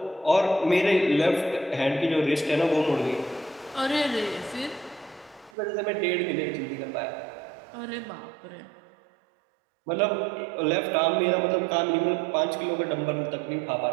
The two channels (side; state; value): left; drops out; at 5.5 s